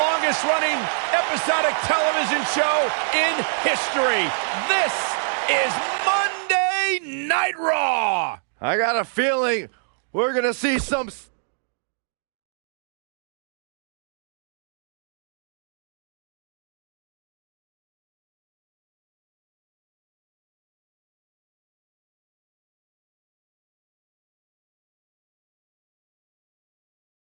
longest-running episodic television show in history. This is Monday Night Raw. I got a feeling we're going to see some...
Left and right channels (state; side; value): silent; left; digital silence